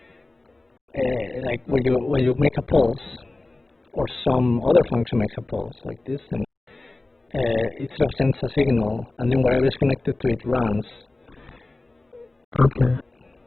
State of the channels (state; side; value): quieter; right; 3.0 dB